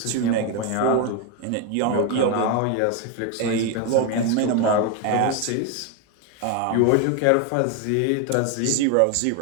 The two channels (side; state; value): both; different; correlation 0.01